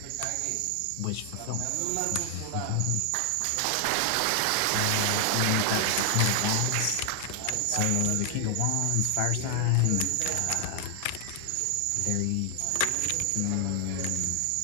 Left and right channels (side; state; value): both; different; correlation 0.00